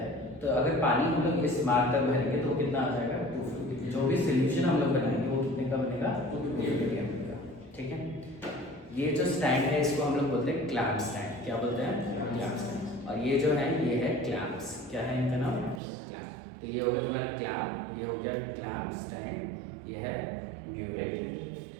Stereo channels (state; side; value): drops out; left; at 15.8 s